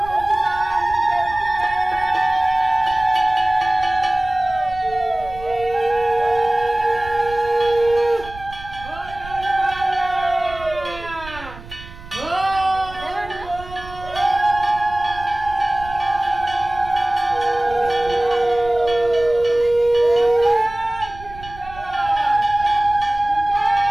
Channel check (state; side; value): noise; right; rumble, 16 dB below the sound